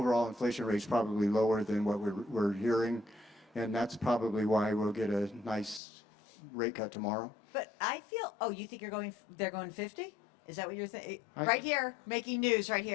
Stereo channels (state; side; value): drops out; right; at 5.8 s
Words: inflation rate is probably lower than what we're hearing, and that's probably why we'll get a nice rate cut tomorrow. But I feel, you think they're going 50? Is that what you're thinking? Right here, making news right